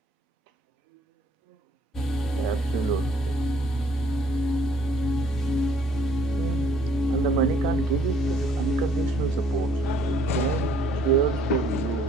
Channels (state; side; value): normal; both; correlation 0.61